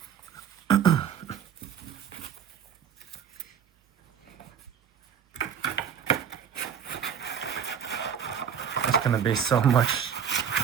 It's gonna be so much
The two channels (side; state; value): left; quieter; 8.1 dB